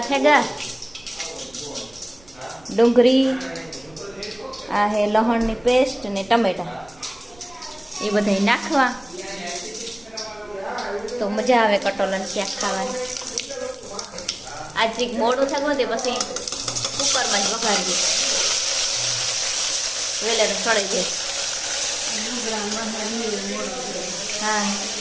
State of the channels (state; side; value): noise; right; rumble, 27 dB below the sound